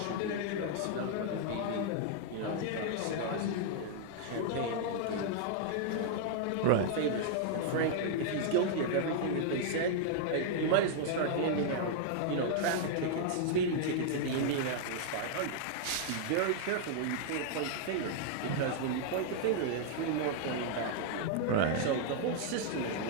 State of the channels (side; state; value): both; different; correlation -0.01